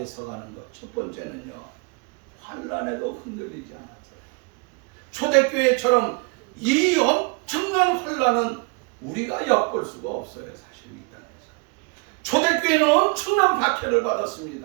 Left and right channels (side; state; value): left; quieter; 31.2 dB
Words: 서가는 것. 첫 번째는요, 환란에도 흔들리지 않았어요. 초대교회처럼 이 엄청난 환란은 우리가 엿볼 수가 없어요. 사실 이 땅에서 초대교회는 엄청난 박해를